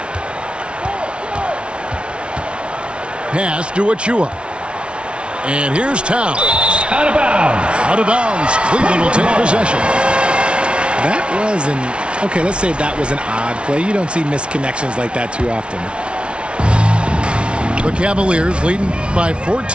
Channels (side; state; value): left; late; 0.058 ms